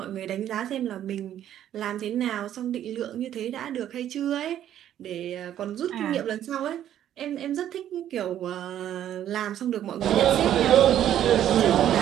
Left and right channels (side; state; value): left; quieter; 11.1 dB